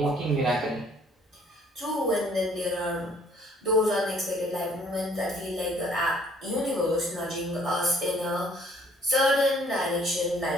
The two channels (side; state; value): both; normal; correlation 0.60